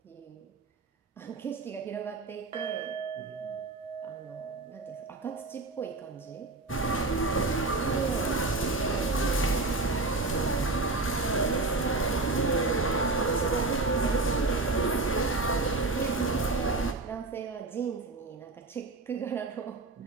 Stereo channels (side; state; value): left; quieter; 3.3 dB